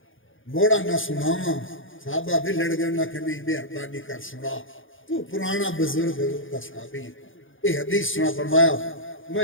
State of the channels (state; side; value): late; right; 0.58 ms